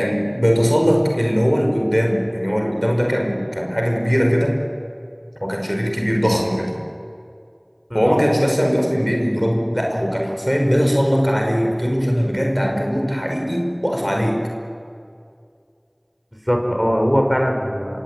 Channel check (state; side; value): identical; both; correlation 1.00